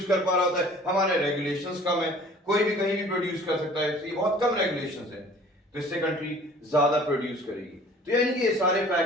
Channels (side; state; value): both; normal; correlation 0.50